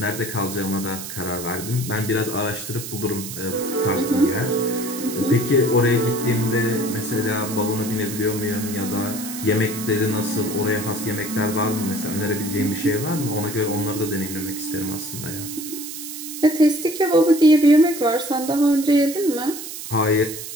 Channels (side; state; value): right; noise; hiss, 9 dB below the sound